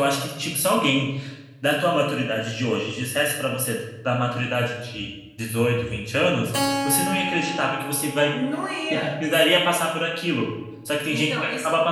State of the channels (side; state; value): both; identical; correlation 1.00